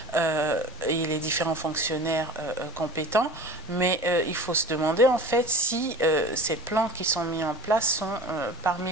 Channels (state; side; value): normal; both; correlation 0.39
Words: et les différents fonctionnaires compétents, mais il faut se demander en fait si ces plans qui sont mis en place sont parmi